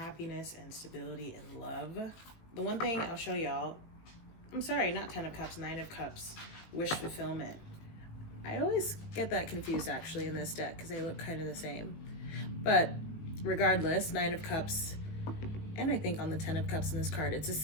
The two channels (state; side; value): late; right; 18 ms